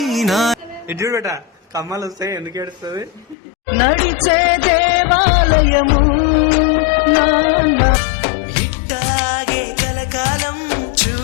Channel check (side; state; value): right; drops out; at 3.4 s